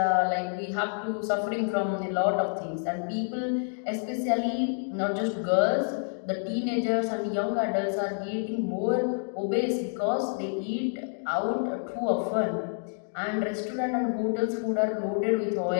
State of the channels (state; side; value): silent; right; digital silence